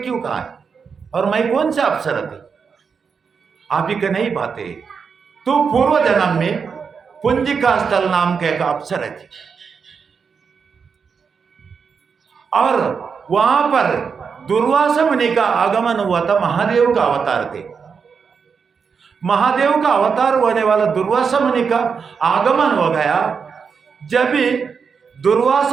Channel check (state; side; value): quieter; left; 5.9 dB